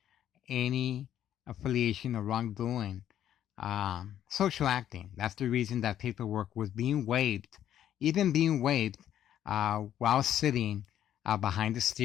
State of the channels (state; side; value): quieter; right; 11.0 dB